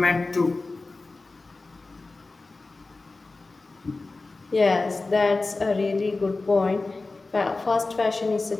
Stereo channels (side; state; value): right; quieter; 3.5 dB